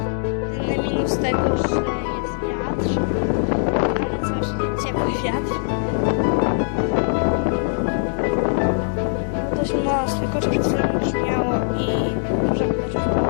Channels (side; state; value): right; silent; 65 dB below the other